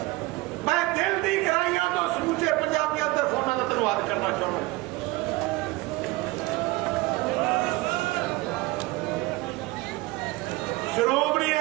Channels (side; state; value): left; quieter; 20.9 dB